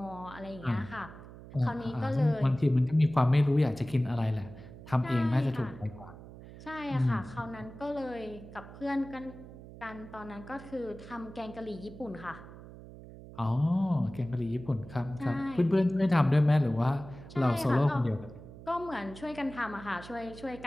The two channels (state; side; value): noise; right; hum, 16 dB below the sound